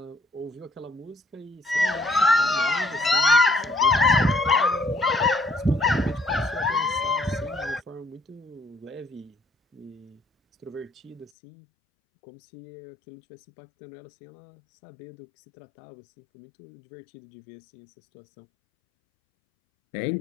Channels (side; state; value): right; drops out; at 11.3 s